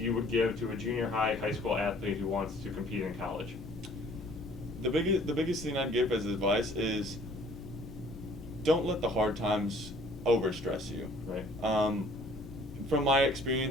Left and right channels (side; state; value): both; normal; correlation 0.56